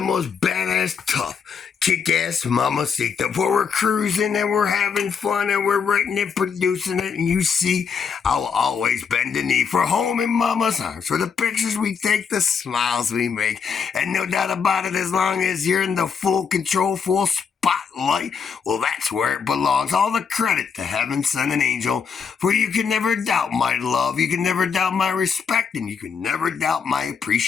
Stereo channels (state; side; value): quieter; right; 6.3 dB